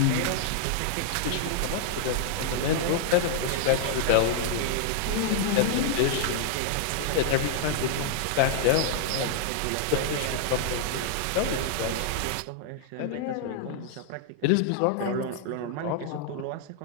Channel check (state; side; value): different; both; correlation -0.01